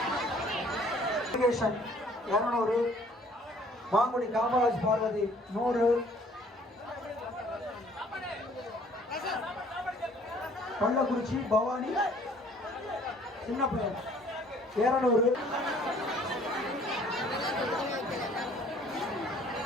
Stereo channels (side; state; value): both; normal; correlation 0.57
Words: 200 மாங்குடி காமராஜ் பார்வதி 100 கள்ளக்குறிச்சி பவானி சின்ன பையன் 200